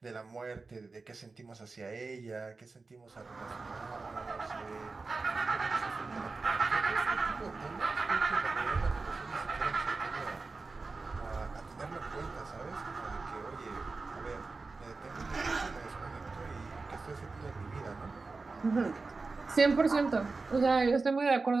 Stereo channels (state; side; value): quieter; left; 3.9 dB